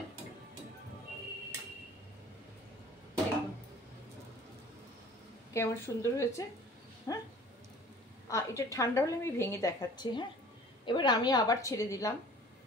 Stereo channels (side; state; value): both; normal; correlation 0.48